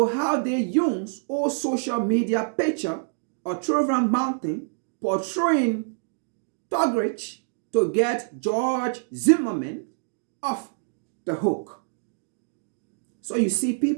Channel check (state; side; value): silent; left; digital silence